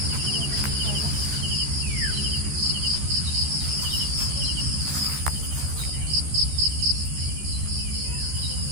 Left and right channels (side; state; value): left; late; 14 ms